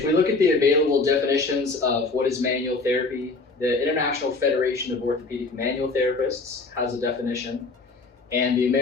we look at the available definitions of what is manual therapy, the International Federation of Orthopedic Manual Therapists has a definition, and the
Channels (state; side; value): quieter; right; 3.7 dB